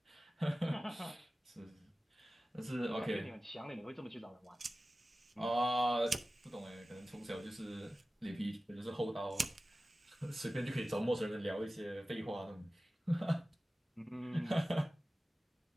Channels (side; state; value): both; normal; correlation 0.96